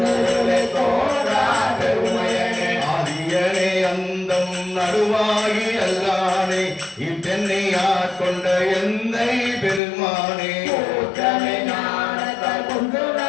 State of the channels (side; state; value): right; drops out; at 9.8 s